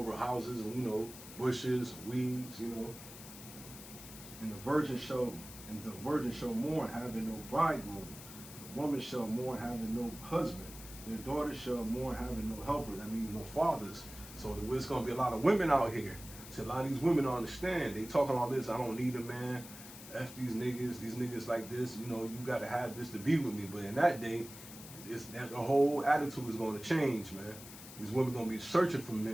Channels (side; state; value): left; noise; hiss, 14 dB below the sound